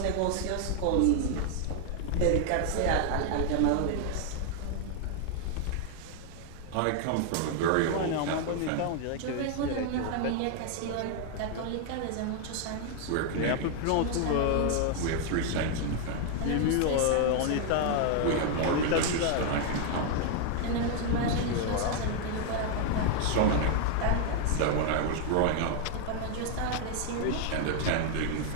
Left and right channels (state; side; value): different; both; correlation 0.00